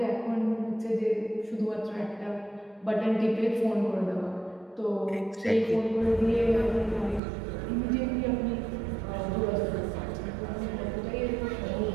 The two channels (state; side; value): drops out; left; at 7.2 s